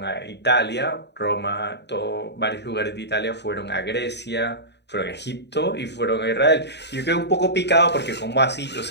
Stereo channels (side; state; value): right; late; 0.50 ms